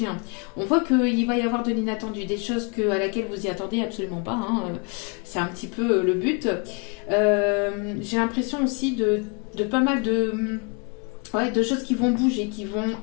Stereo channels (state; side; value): quieter; right; 34.3 dB